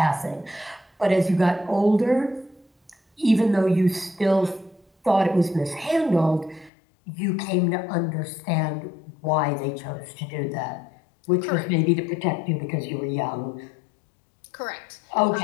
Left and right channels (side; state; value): right; drops out; at 6.7 s